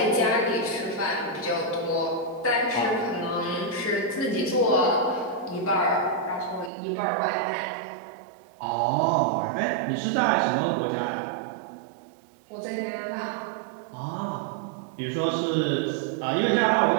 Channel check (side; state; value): left; drops out; at 6.7 s